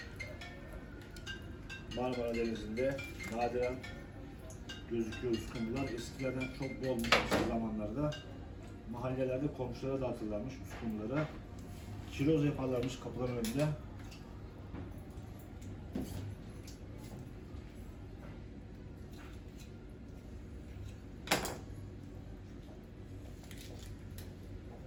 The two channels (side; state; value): both; identical; correlation 1.00